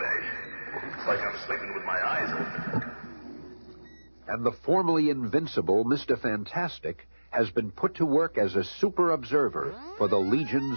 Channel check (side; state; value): both; inverted; correlation -1.00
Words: It's like I'm sleeping with my eyes open. And the formerly invincible Mr. Fantastic has been put to work as a super observer for the